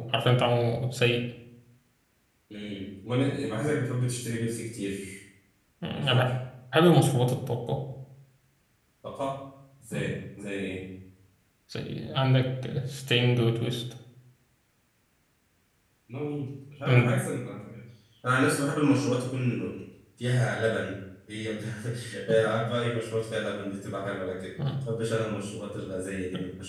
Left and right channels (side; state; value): both; identical; correlation 1.00